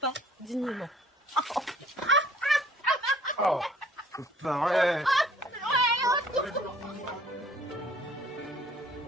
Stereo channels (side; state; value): both; normal; correlation 0.55